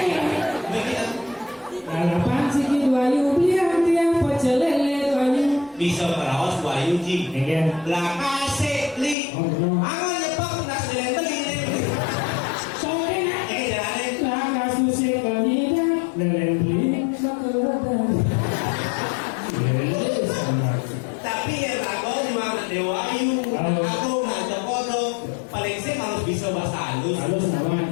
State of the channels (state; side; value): drops out; right; at 9.2 s